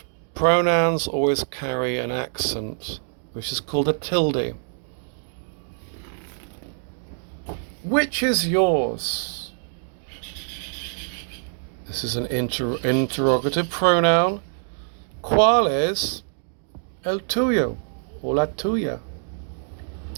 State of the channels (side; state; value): left; silent; digital silence